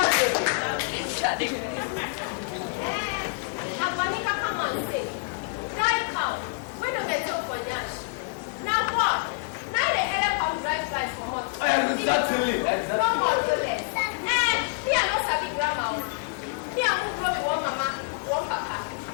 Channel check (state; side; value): quieter; right; 35.3 dB